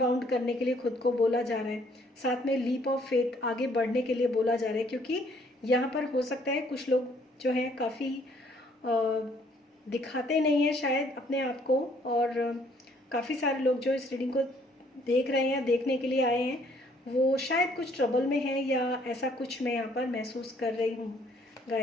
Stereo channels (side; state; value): both; normal; correlation 0.63